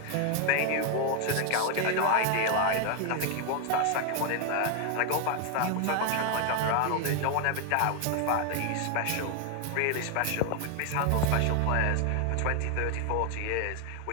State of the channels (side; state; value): both; different; correlation 0.01